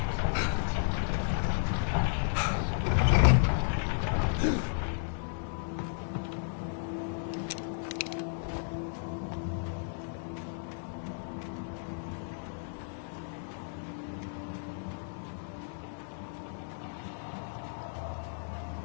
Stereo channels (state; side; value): silent; right; digital silence